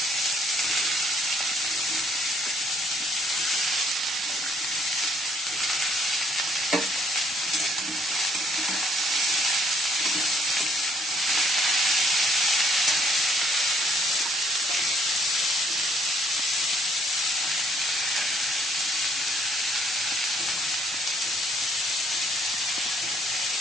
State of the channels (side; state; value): both; normal; correlation 0.65